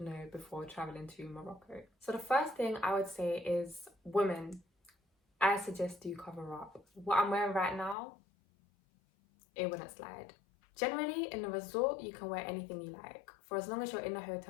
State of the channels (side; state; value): right; drops out; at 8.0 s